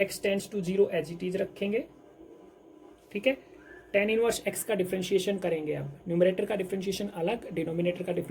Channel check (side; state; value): both; identical; correlation 1.00